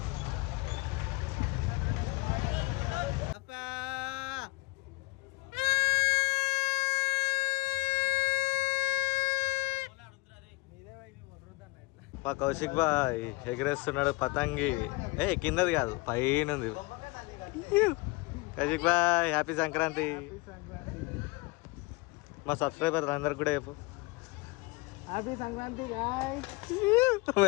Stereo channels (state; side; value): quieter; right; 24.4 dB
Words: మా కౌశిక్ బాయ్ ఎగరేస్తున్నాడు పతంగి. కిందది కాదు పైన ఉంది. కౌశిక్ బాయ్ హ్యాపీ సంక్రాంతి. మా సబ్స్క్రైబర్ అందరికి కూడా చెప్పు హ్యాపీ సంక్రాంతి.